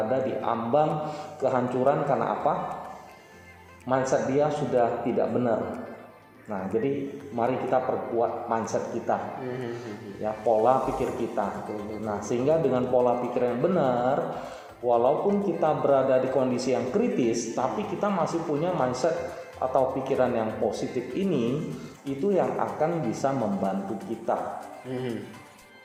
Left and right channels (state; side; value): identical; both; correlation 1.00